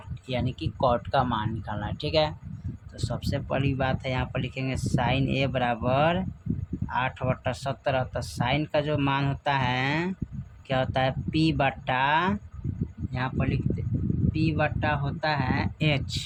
यानी कि कॉट का मान निकालना है। ठीक है, तो सबसे पहली बात है यहाँ पर लिखेंगे साइन ए बराबर 8/17। तो साइन का जो मान होता है क्या होता है, P बट्टा, यहाँ पर लिखते P बट्टा होता है H,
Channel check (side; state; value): both; identical; correlation 1.00